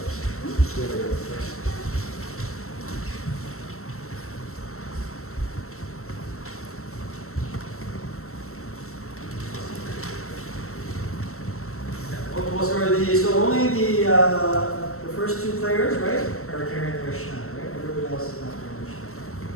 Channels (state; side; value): late; right; 0.63 ms